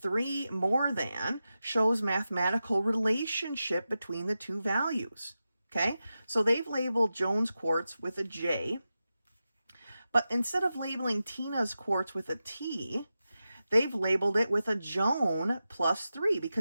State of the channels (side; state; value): both; inverted; correlation -0.92